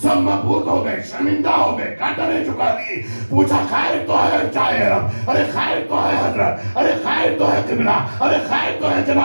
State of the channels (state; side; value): inverted; both; correlation -1.00